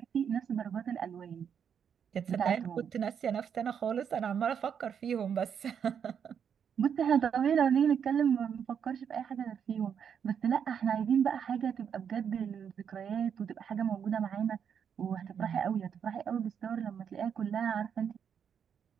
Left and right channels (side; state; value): left; quieter; 7.7 dB